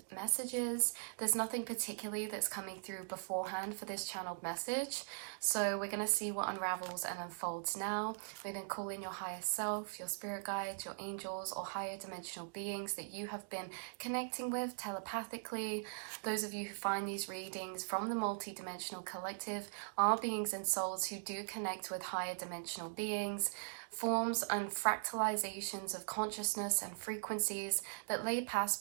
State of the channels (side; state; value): left; silent; digital silence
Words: messages. There's nothing particularly that's coming through beforehand for this channeled message, so we're going to see what unravels and unfolds now. We're going to call in your higher self, your spirit guides, your angels, or higher dimensional beings that you have been connecting with telepathically. Those of you who find these readings from the multi-dimensional collective are beings and souls who do connect with higher dimensional beings, forms and fractalizations of consciousness and frequencies that lay past